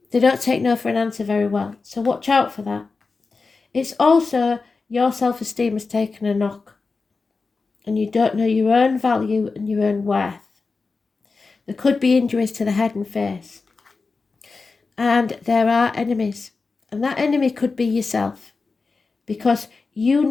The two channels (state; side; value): quieter; right; 4.2 dB